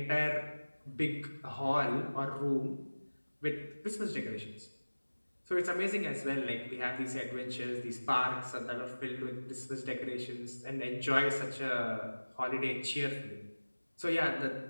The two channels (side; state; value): both; inverted; correlation -1.00